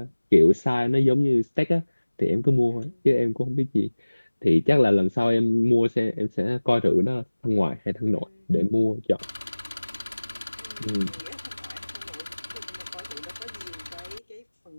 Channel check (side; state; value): both; inverted; correlation -1.00